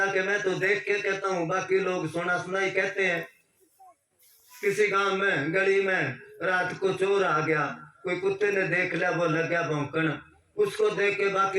कि मैं तो देख के कहता हूँ, बाकी लोग सुना सुना ही कहते हैं। किसी गांव में गली में रात को चोर आ गया, कोई कुत्ते ने देख लिया, वो लग गया भौंकण, उसको देख के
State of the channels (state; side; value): identical; both; correlation 1.00